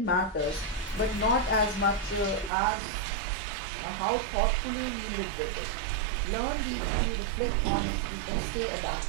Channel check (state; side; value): drops out; left; at 2.5 s